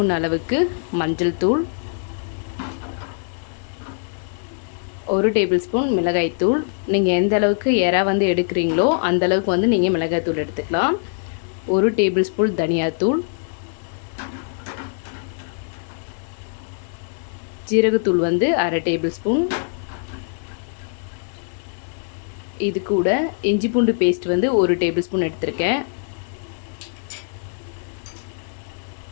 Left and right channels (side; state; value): right; silent; digital silence